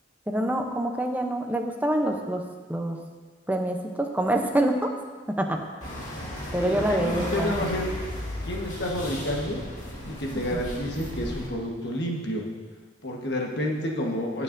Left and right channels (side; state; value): both; normal; correlation 0.64